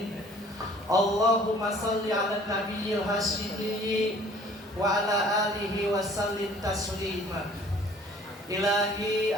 Allahumma shalli ala nabiyyil hasyimi wa ala alihi wa sallim taslima. Ilahi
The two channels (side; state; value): both; normal; correlation 0.53